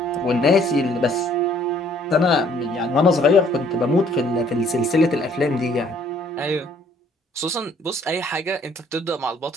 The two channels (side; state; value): both; normal; correlation 0.61